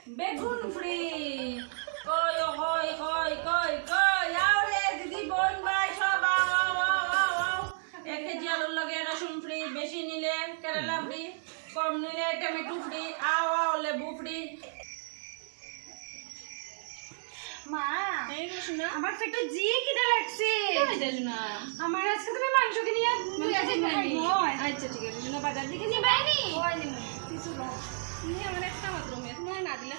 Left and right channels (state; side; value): silent; left; 57 dB below the other